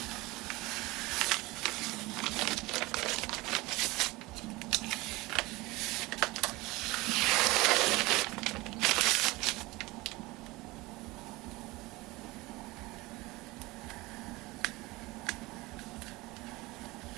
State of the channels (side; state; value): left; quieter; 21.6 dB